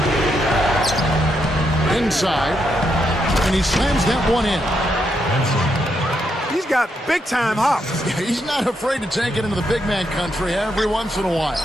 Inside. And he slams that one in. He's got big-time hops. He's not afraid to take it into the big man country every once in a while.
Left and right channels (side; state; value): both; normal; correlation 0.80